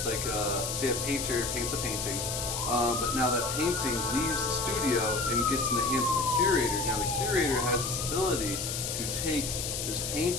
like say a painter paints a painting, but now that painting leaves the studio and gets in the hands of the curator. Now the curator has this ability to take this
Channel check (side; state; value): left; noise; hiss, 3 dB below the sound